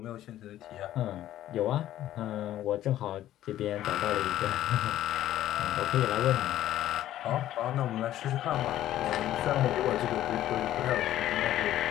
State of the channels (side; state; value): right; quieter; 13.0 dB